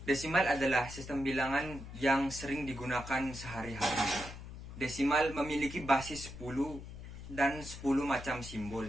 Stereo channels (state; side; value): noise; left; hum, 12 dB below the sound